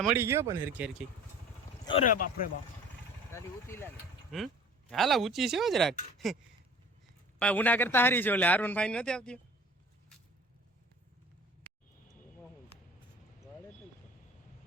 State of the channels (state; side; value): normal; both; correlation 0.45